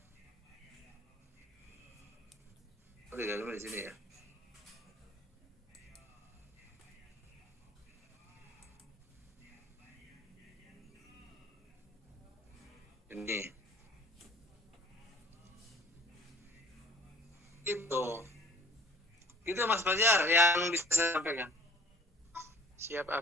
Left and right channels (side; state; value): both; normal; correlation 0.51